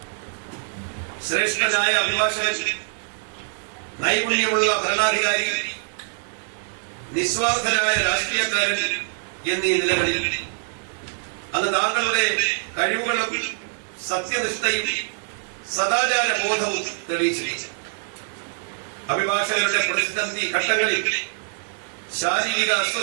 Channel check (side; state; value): left; silent; 63 dB below the other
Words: ശ്രേഷ്ഠനായ അഭിഭാഷകൻ, നൈപുണ്യമുള്ള ഭരണാധികാരി, നിസ്വാർത്ഥനായ രാഷ്ട്രീയക്കാരൻ എന്നീ നിലകളിൽ അന്ന് താങ്കളുടെ കഴിവുകളും സത്യനിഷ്ഠയും സദാചാര ബോധവും തെളിയിച്ചിരിക്കുന്നു. അഭിഭാഷകരുടെ പ്രതിസന്ധി ഘട്ടങ്ങളിൽ ശാരീരിക